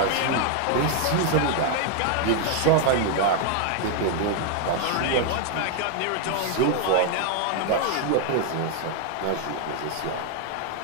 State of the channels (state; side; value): different; both; correlation 0.01